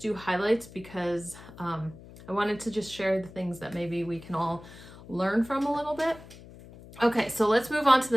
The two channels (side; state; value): left; noise; hum, 18 dB below the sound